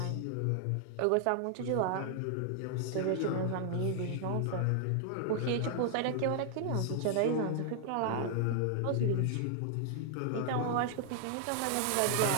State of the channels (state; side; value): different; both; correlation 0.00